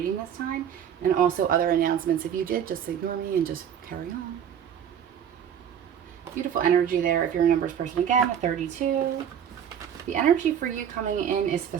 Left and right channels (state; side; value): quieter; left; 8.8 dB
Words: this time. And also other announcements. If you did, just ignore me and just carry on. Beautiful energy there if you're a numbers person. Again, a 32. The energy for you coming in is